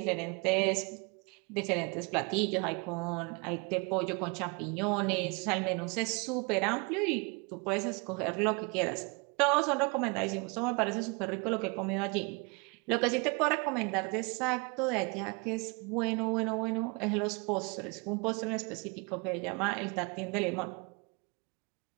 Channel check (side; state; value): left; quieter; 30.8 dB